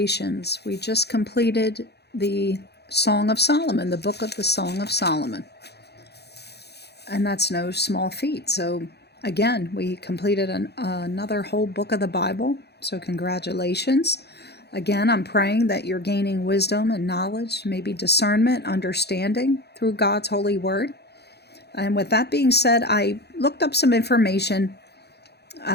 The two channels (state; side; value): late; right; 0.48 ms